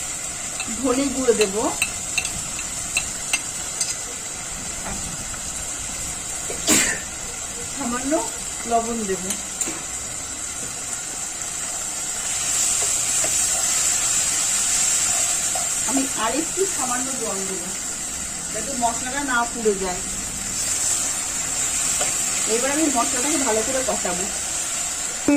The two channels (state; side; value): identical; both; correlation 1.00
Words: ধনে গুঁড়ো দেব। সামান্য লবণ দেব। আমি আরেকটু সামান্য জল দেব, যাতে মশলাটা না পুড়ে যায়। এবার আমি মশলাটাকে ভালো করে কষাবো।